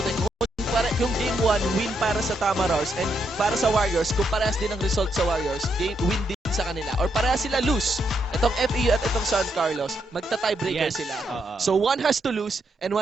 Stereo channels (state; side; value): normal; both; correlation 0.79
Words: kung Game 1 win para sa Tamarors and para sa Warriors, kung parehas din ang result sa Warriors, win din sa kanila, or parehas sila lose, itong FEU at itong San Carlos, magta-tiebreaker sila. So one has to lose and